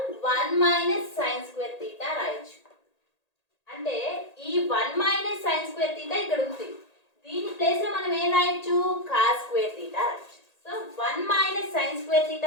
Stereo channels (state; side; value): late; right; 1.8 ms